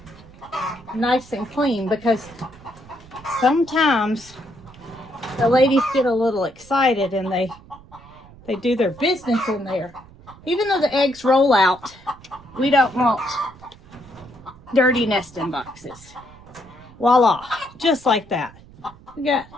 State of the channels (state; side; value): noise; right; rumble, 22 dB below the sound